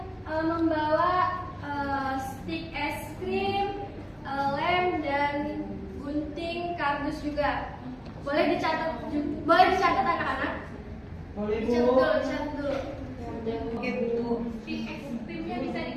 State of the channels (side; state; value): both; identical; correlation 1.00